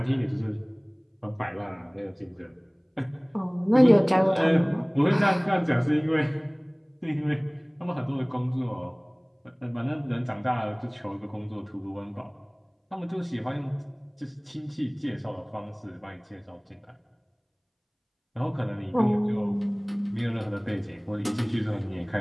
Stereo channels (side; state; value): both; identical; correlation 1.00